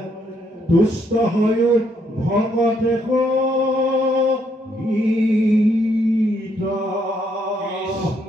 তুষ্ট হৈও ভকতে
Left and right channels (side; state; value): both; normal; correlation 0.73